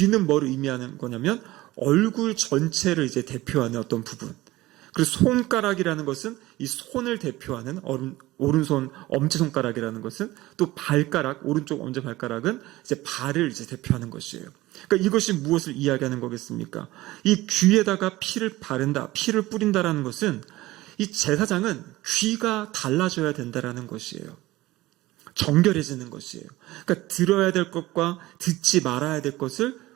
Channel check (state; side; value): quieter; left; 18.0 dB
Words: 뭘 의미하는 거냐면 얼굴 전체를 이제 대표하는 어떤 부분. 그리고 손가락이라는 것은 이 손을 대표하는 오른손 엄지손가락이라는 것은 또 발가락, 오른쪽 엄지발가락은 이제 발을 이제 대표하는 것이에요. 그러니까 이것이 무엇을 이야기하는 거겠습니까? 이 귀에다가 피를 바른다, 피를 뿌린다라는 것은 이 제사장은 귀가 달라져야 된다라는 것이에요. 정결해지는 것이에요. 그러니까 들어야 될 것과 듣지 말아야 될 것을